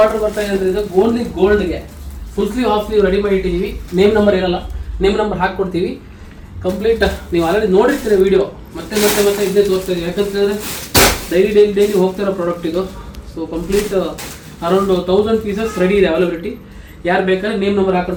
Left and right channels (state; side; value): identical; both; correlation 1.00